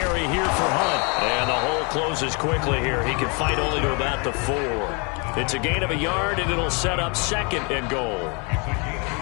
here for Hunt. And the hole closes quickly here. He can fight only to about the 4. It's a gain of a yard, and it'll set up 2nd and goal.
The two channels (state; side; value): quieter; right; 32.8 dB